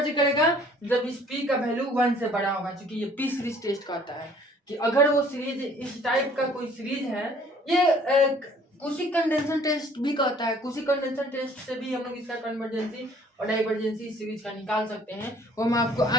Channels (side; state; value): both; normal; correlation 0.56